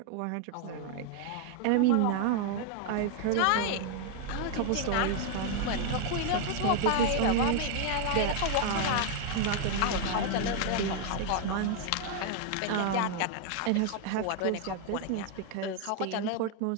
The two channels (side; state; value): both; different; correlation 0.00